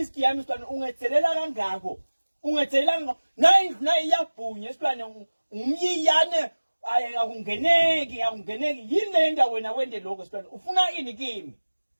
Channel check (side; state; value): both; inverted; correlation -1.00